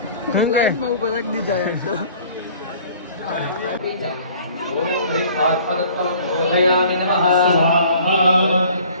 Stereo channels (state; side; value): inverted; both; correlation -0.51